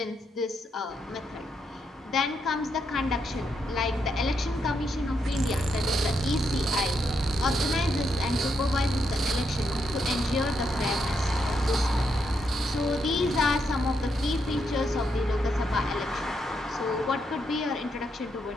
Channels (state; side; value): normal; both; correlation 0.79